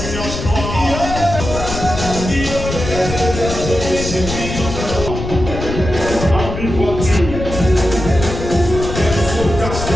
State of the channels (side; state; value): left; noise; rumble, 6 dB below the sound